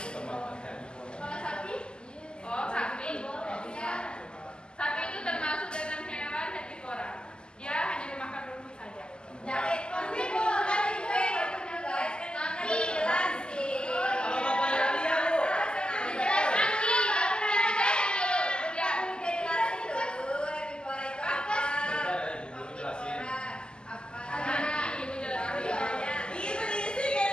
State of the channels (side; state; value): right; late; 0.048 ms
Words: sapi itu sapi itu termasuk dalam hewan herbivora. Dia hanya memakan rumput saja. Kalau bapaknya Alia, Bu.